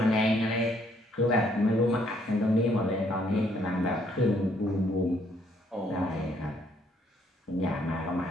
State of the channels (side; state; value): both; normal; correlation 0.67